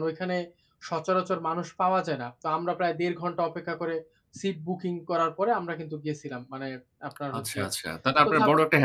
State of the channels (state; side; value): identical; both; correlation 1.00